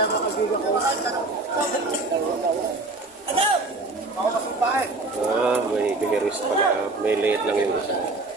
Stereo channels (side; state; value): left; quieter; 3.3 dB